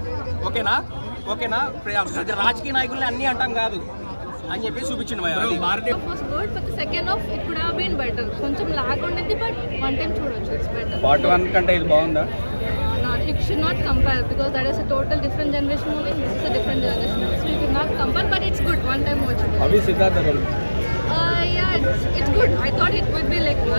ఓకేనా. రాజకీయ నాయకుల్ని అన్ని అంటాం కాదు అని చెప్పి చూపించింది. కొంచెం లాగ్ ఉండేది, బట్ వన్ టైం చూడొచ్చు. పార్ట్ 1 కంటే ఇది బాగుందా? It should not compare because that is a total different generation movie. This is a different generation movie, so you could not compare. But it's good. One time watch it. Abhi Siddhartha role. Yeah, it's good. I thought it would be like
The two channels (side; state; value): both; inverted; correlation -1.00